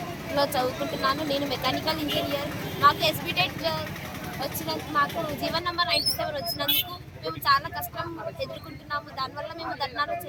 చదువుకుంటున్నాను. నేను మెకానికల్ ఇంజనీర్. మాకు ఎస్బీటెట్ వచ్చినందుకు, మాకు జీవన్ నెంబర్ 97 వచ్చినందుకు మేము చాలా కష్టం ఎదుర్కొంటున్నాము. దానివల్ల మేము ధర్నాలు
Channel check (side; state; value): both; identical; correlation 1.00